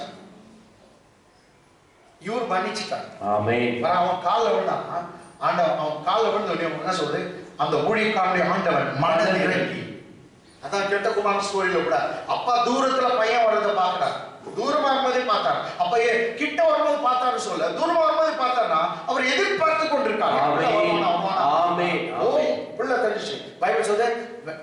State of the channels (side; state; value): both; identical; correlation 1.00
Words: இவர் மன்னிச்சுட்டான். அவன் காலில் விழுந்தான். ஆண்டவன் அவன் காலில் விழுந்து என்ன சொல்றது, அந்த ஊழியக்காரனுடைய ஆண்டவன் மனதில் இறங்கி. அதான் கெட்ட குமாரன் ஸ்டோரியில கூட அப்பா தூரத்துல பையன் வர்றதை பார்க்கிறார். தூரமா வரும்போதே பார்த்தார். அப்ப கிட்ட வரும்போது பார்த்தாரு சொல்ல, தூரமா வரும்போது பார்த்தாருன்னா அவர் எதிர்பார்த்து கொண்டிருக்காரு. பிள்ளை தெரிஞ்சு பைபிள் சொல்லுது